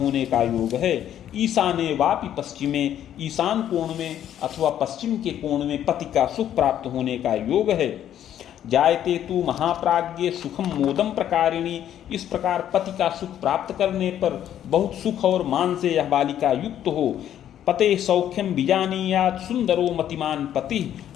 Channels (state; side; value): quieter; right; 10.8 dB